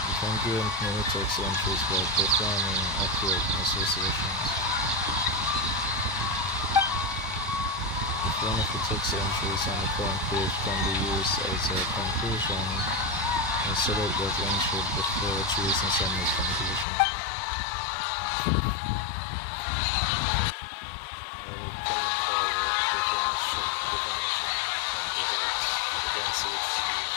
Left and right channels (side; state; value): right; drops out; at 16.9 s